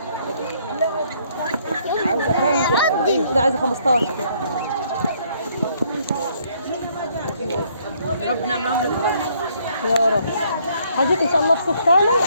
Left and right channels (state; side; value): inverted; both; correlation -0.67